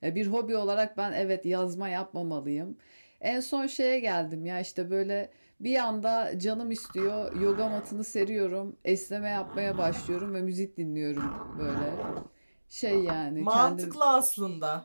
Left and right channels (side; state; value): both; inverted; correlation -1.00